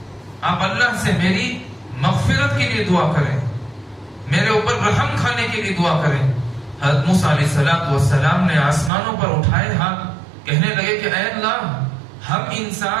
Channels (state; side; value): drops out; left; at 8.9 s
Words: آپ اللہ سے میری مغفرت کے لیے دعا کریں، میرے اوپر رحم کھانے کے لیے دعا کریں. حضرت موسیٰ علیہ السلام نے آسمانوں پر اٹھائے ہاتھ، کہنے لگے کہ اے اللہ، ہم